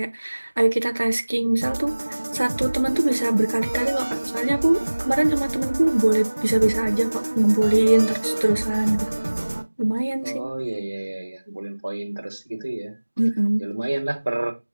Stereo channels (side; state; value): both; inverted; correlation -1.00